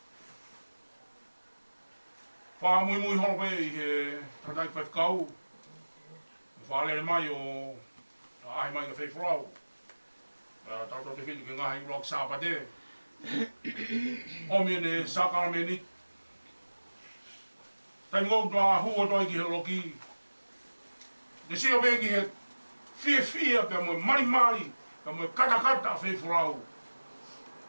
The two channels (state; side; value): inverted; both; correlation -1.00